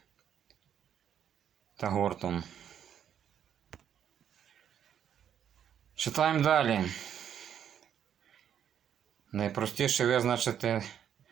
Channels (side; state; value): left; quieter; 9.2 dB